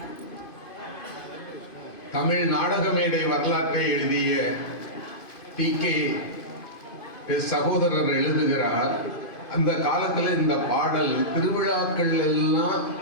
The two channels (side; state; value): right; late; 2.5 ms